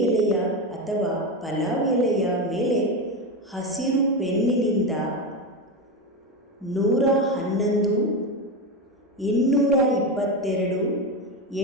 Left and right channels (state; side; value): normal; both; correlation 0.16